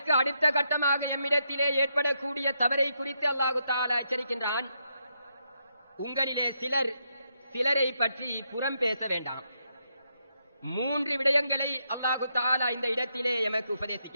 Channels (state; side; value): inverted; both; correlation -0.80